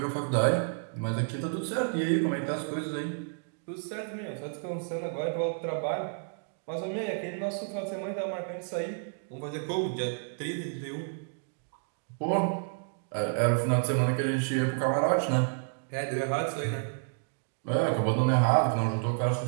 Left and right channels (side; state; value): left; silent; digital silence